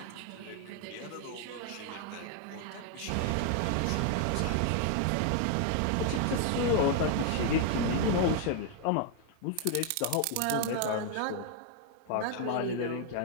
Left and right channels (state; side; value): different; both; correlation 0.00